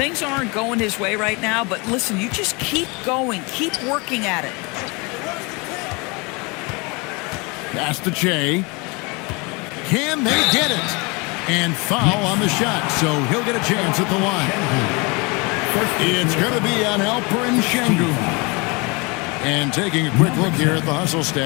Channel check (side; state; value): right; quieter; 28.3 dB